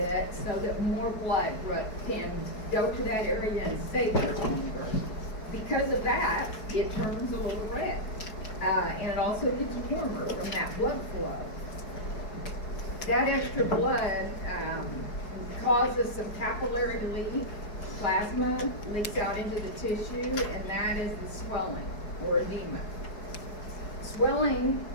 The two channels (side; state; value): right; late; 4.7 ms